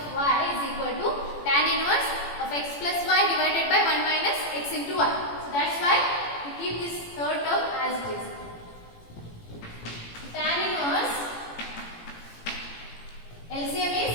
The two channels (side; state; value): right; late; 18 ms